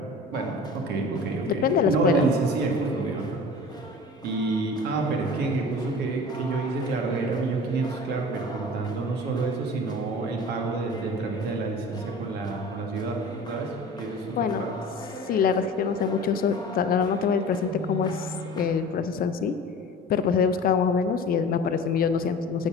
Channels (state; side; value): normal; both; correlation 0.39